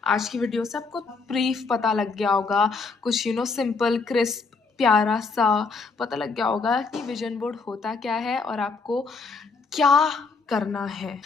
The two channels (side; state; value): right; quieter; 4.5 dB